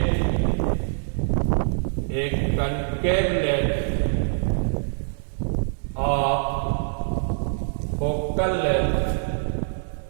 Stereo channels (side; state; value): left; silent; 62 dB below the other